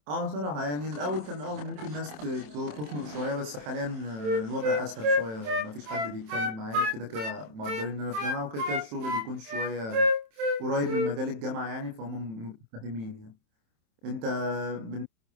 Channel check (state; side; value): late; left; 27 ms